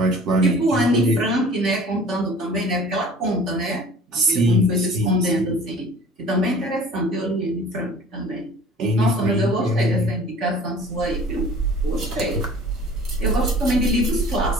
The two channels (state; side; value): normal; both; correlation 0.46